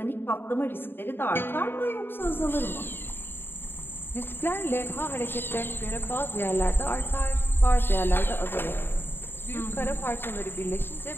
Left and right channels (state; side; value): late; right; 0.10 ms